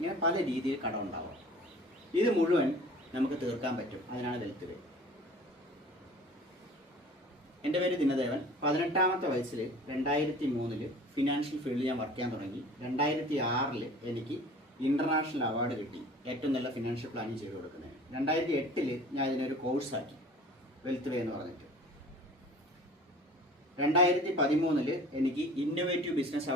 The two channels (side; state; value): both; normal; correlation 0.45